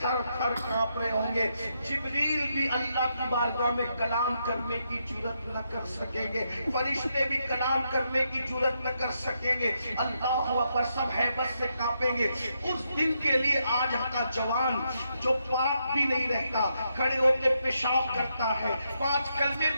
تھر تھر کانپ رہے ہوں گے. جبریل بھی اللہ کی بارگاہ میں کلام کرنے کی جرات نہ کر سکیں گے, فرشتے بھی کلام کرنے کی جرات نہ کر سکیں گے. اللہ اکبر, سب ہیبت سے کانپیں گے. اس دن کے لیے آج کا جوان جو پاک بھی نہیں رہتا, کھڑے ہو کے پیشاب کرتا ہے, 5 کلمے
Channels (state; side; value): inverted; both; correlation -0.80